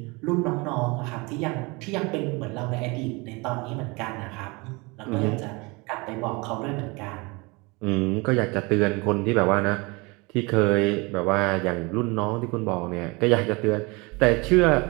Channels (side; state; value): left; quieter; 26.4 dB